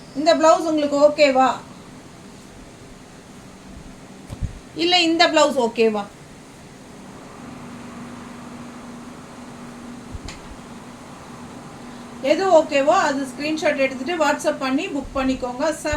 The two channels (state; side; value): identical; both; correlation 1.00